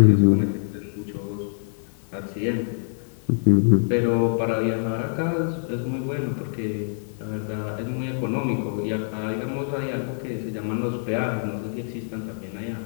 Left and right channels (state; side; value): silent; right; digital silence